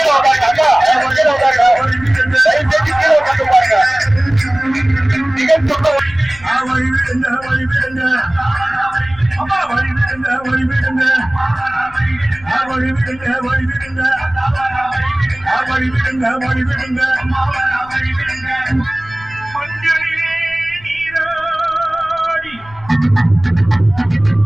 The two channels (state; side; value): noise; left; rumble, 22 dB below the sound